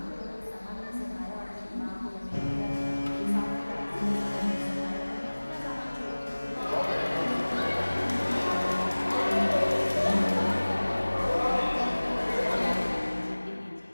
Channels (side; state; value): both; inverted; correlation -1.00